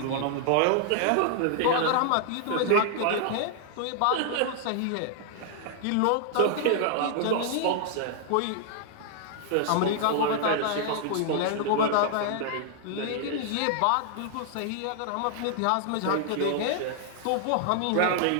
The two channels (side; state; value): both; different; correlation -0.01